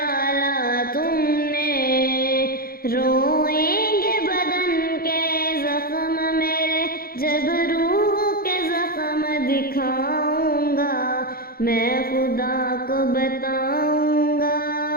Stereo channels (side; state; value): right; late; 0.43 ms